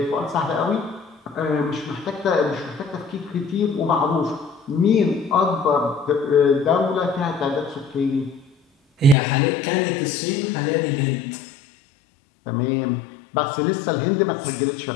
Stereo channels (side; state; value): right; drops out; at 9.2 s